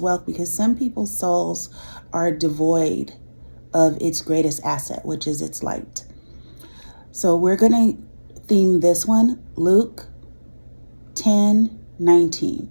wealth because some people's souls are devoid of its greatest asset, which is its light. So we're going to theme this one Luke 10:19.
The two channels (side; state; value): both; inverted; correlation -1.00